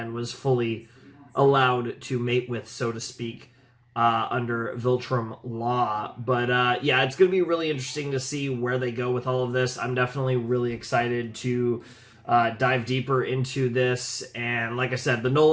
was fully allowed to mate with, so to speak, under Viltrum law. But yeah, it's going to be really interesting to see where they go with all of this. I'm definitely really excited to dive deeper into this. And like I said, the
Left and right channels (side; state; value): both; identical; correlation 1.00